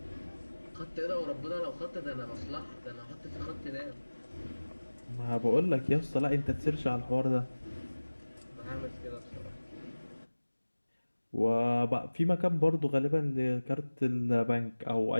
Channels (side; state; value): both; inverted; correlation -1.00